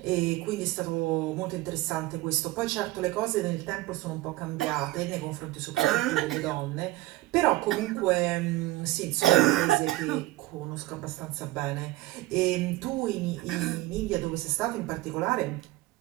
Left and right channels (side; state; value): left; quieter; 17.9 dB